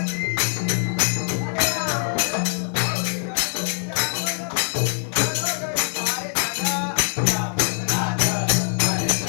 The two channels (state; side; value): silent; right; digital silence